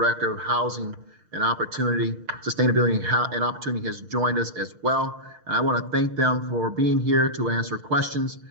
of Housing and Opportunity, Sustainability and Opportunity, has joined us as well. And I want to thank them for being here to answer questions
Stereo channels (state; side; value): late; left; 6.5 ms